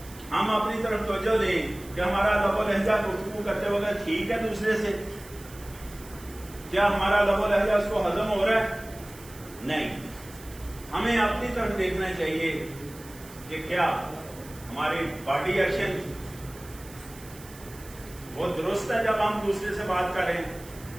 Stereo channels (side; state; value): right; noise; hiss, 19 dB below the sound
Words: ہم اپنی طرف توجہ دیں کہ ہمارا لب و لہجہ گفتگو کرتے وقت ٹھیک ہے دوسرے سے، کیا ہمارا لب و لہجہ اس کو ہضم ہو رہا ہے؟ نہیں، ہمیں اپنی طرف دیکھنا چاہیے کہ کیا ہماری باڈی ایکشن وہ درست ہے جب ہم دوسرے سے بات کر رہے ہیں؟